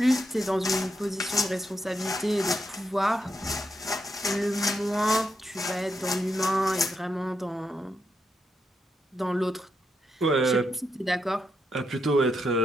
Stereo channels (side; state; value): both; normal; correlation 0.82